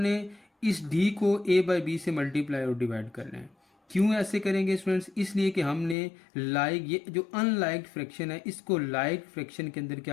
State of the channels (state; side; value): drops out; right; at 6.0 s